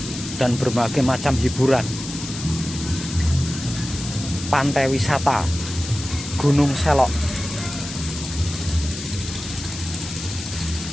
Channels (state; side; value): noise; left; hiss, 10 dB below the sound